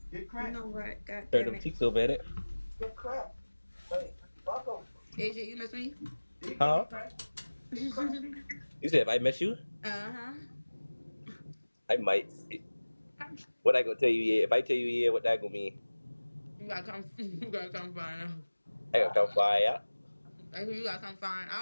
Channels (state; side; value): inverted; both; correlation -1.00